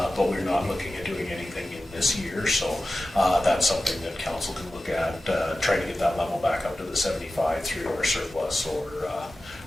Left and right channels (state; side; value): normal; both; correlation 0.95